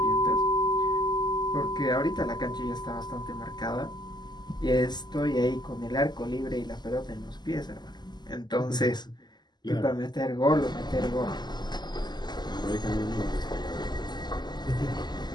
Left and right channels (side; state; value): right; late; 0.21 ms